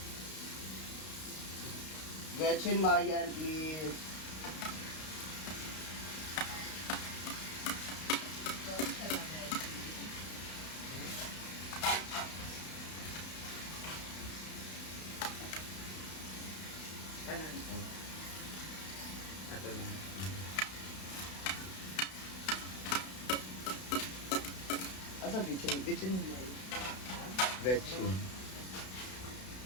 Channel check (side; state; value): right; late; 32 ms